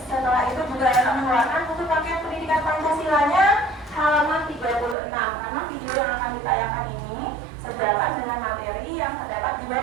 Setelah itu juga akan mengeluarkan buku paket pendidikan Pancasilanya halaman 36, karena video yang akan ditayangkan ini sejalan dengan materi yang terdapat di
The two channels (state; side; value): drops out; left; at 5.0 s